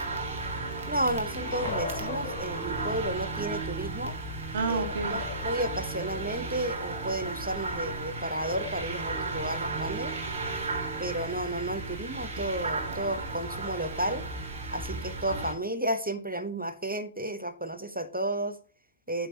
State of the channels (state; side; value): inverted; both; correlation -0.39